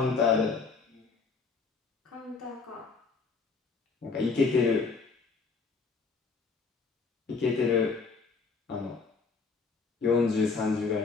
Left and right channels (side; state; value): right; quieter; 4.6 dB